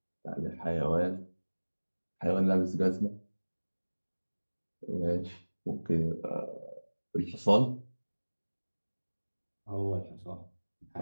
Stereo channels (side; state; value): both; inverted; correlation -1.00